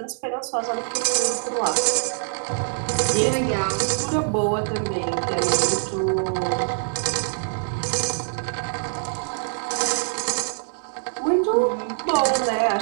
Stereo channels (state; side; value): silent; left; 63 dB below the other